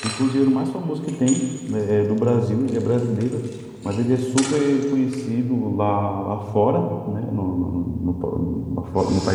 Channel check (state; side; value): identical; both; correlation 1.00